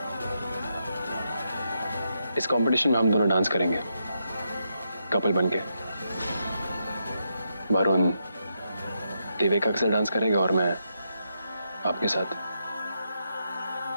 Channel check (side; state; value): both; inverted; correlation -0.82